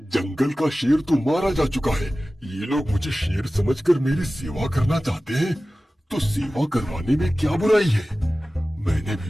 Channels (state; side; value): normal; both; correlation 0.96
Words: जंगल का शेर तो मारा जा चुका है। ये लोग मुझे शेर समझकर मेरी सेवा करना चाहते हैं, तो सेवा करवाने में क्या बुराई है? मैंने